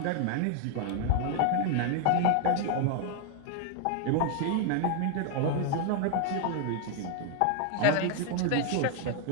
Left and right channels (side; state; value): both; different; correlation 0.00